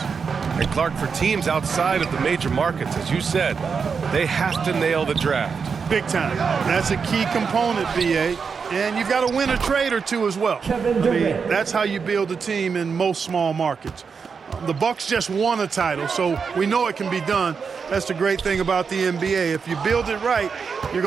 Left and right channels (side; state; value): left; quieter; 5.7 dB